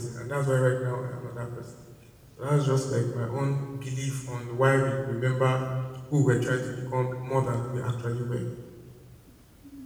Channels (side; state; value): both; identical; correlation 1.00